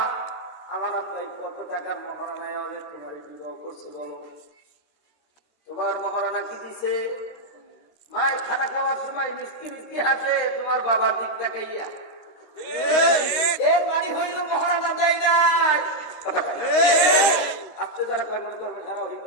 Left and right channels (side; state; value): right; late; 13 ms